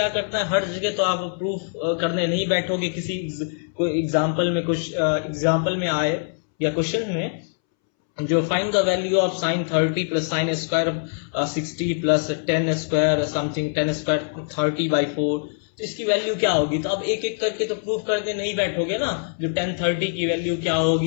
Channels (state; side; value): silent; right; 63 dB below the other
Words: करना है, हर जगह तो आप प्रूफ करने नहीं बैठोगे, किसी कोई एग्जाम्पल में कुछ एग्जाम्पल में आए या क्वेश्चन में जो find the value of sine 30 plus sine square 60 plus ten square something 10 square 30/4, तो इसकी वैल्यू क्या होगी। तो अब एक एक करके तो प्रूफ करने नहीं बैठोगे ना, जो 1030 की वैल्यू क्या